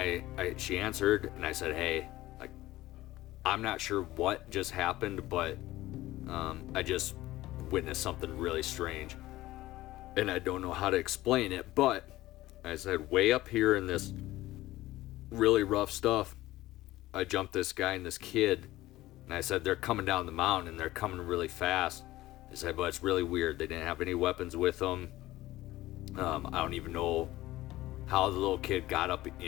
she answered, and I said, hey, like, I'm not sure what just happened, but I just witnessed something really strange. And I don't know how to explain it, but I said, way up here in this really rough stuff, I jumped this guy and this kid, and I said, they're coming down the mountain, and they're coming really fast. I said, but it's really weird. They didn't have any weapons with them. I don't even know how the little kid got up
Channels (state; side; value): quieter; right; 16.7 dB